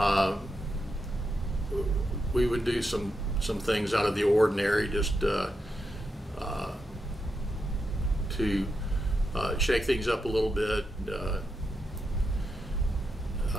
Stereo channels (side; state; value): both; normal; correlation 0.85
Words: We would do some things out of the ordinary, just to shake things up a little bit.